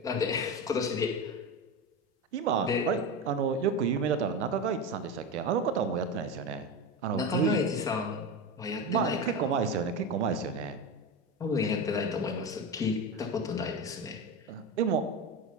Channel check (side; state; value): both; normal; correlation 0.21